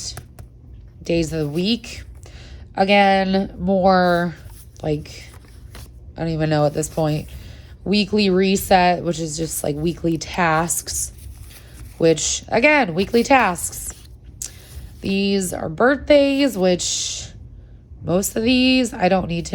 days of the week. Again, more like, I don't even know at this point. Weekly reset, which is just like weekly tasks, which again, weekly tasks. These are birthdays, which most of these I don't need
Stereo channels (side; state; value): both; identical; correlation 1.00